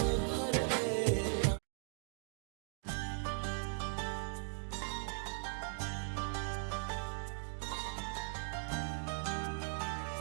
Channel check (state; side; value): silent; left; 52 dB below the other